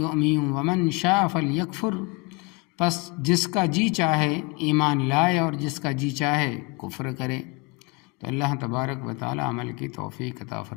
ومن شاء فلیکفر، پس جس کا جی چاہے ایمان لائے اور جس کا جی چاہے کفر کرے۔ تو اللہ تبارک و تعالی عمل کی توفیق عطا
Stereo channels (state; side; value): quieter; right; 27.6 dB